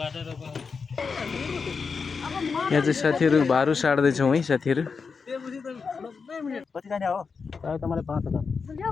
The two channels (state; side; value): quieter; right; 5.2 dB